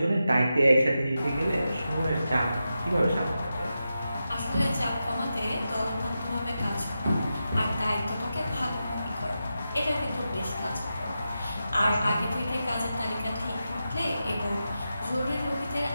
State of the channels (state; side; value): inverted; both; correlation -0.90